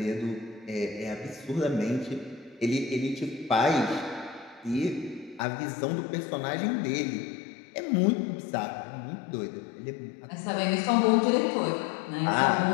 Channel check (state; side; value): drops out; right; at 5.4 s